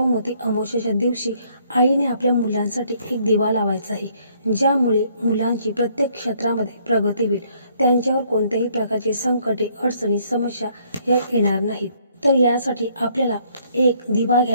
अमावस्येच्या दिवशी आईने आपल्या मुलांसाठी एक दिवा लावायचा आहे, ज्यामुळे मुलांची प्रत्येक क्षेत्रामध्ये प्रगती होईल. त्यांच्यावर कोणत्याही प्रकारचे संकटे, अडचणी, समस्या या येणार नाहीत. तर यासाठी आपल्याला एक दिवा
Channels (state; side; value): inverted; both; correlation -0.66